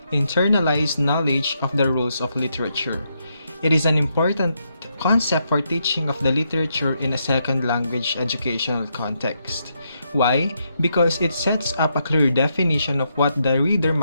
internalized knowledge of the rules of literature. It is an important concept for teaching of the literature in a second language educational context. Why? Because it sets up a clear definition of what the reader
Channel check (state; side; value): inverted; both; correlation -0.80